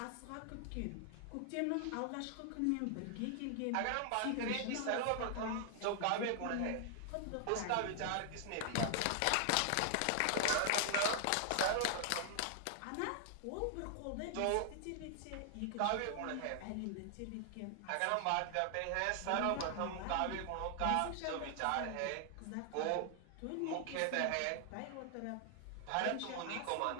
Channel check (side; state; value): both; different; correlation 0.00